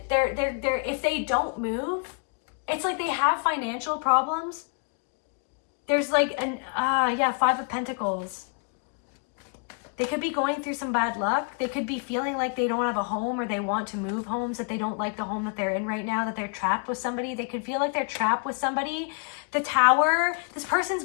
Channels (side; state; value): right; quieter; 37.1 dB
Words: They're if they don't move, it's like they have financial problems. There's like an 5 of Pentacles. They could be going through some bad luck. They could be feeling like they don't have a home, or they want to move homes, that they don't like the home that they're in right now, that they're trapped with somebody. They could feel like they're trapped with somebody. The Tower, this person's